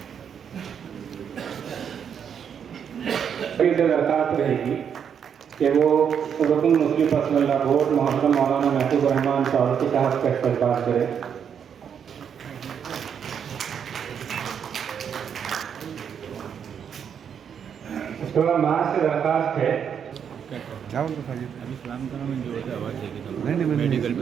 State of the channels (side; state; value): left; quieter; 7.8 dB